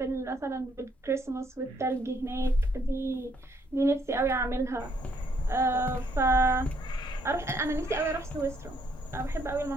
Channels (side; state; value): both; normal; correlation 0.70